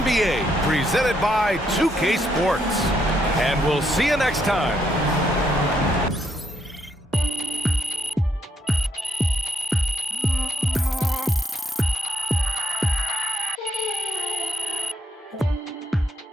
presented by 2K Sports. And we'll see you next time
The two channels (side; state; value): both; normal; correlation 0.76